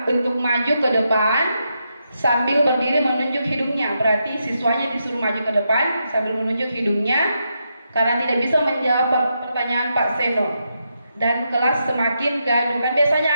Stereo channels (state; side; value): inverted; both; correlation -0.83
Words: untuk maju ke depan sambil berdiri menunjuk hidungnya. Berarti siswanya disuruh maju ke depan sambil menunjuk hidungnya karena tidak bisa menjawab pertanyaan Pak Seno. Dan kelas semakin gaduh. Kan biasanya